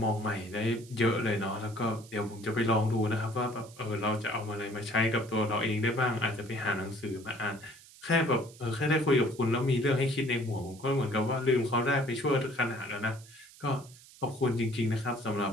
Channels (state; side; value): noise; right; hiss, 21 dB below the sound